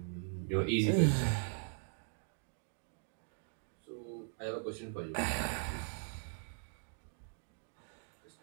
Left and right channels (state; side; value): silent; left; digital silence